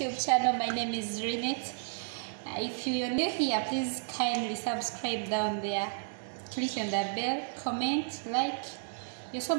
channel. My name is Renette. If you're new here, please kindly subscribe down there, click on the bell, comment, like. You're so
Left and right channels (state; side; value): silent; left; digital silence